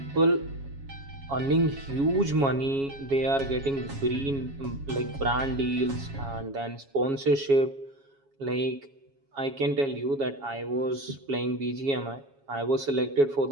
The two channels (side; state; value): left; late; 7.3 ms